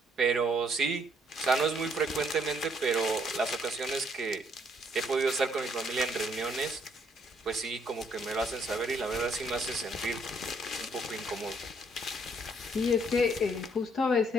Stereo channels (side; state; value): both; normal; correlation 0.68